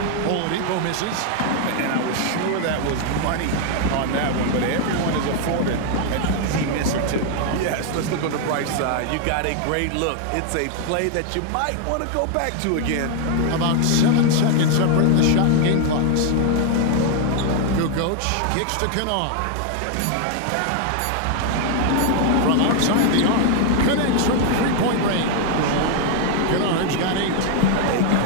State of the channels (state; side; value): different; both; correlation 0.00